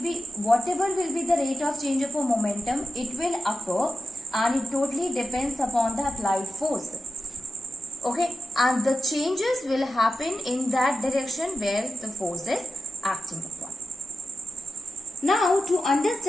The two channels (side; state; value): both; normal; correlation 0.91